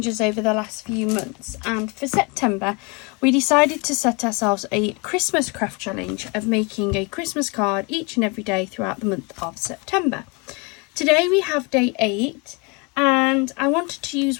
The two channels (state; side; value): quieter; right; 30.2 dB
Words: over the last few months, and for September we decided to set ourselves a Christmas craft challenge of making a Christmas card each and every day throughout the month of September. Today we have day 8 and I wanted to